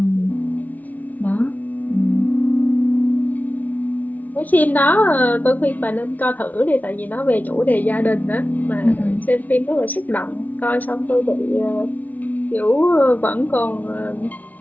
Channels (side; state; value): right; late; 0.076 ms